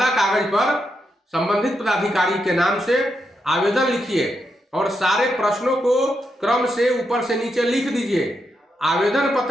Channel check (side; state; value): both; normal; correlation 0.83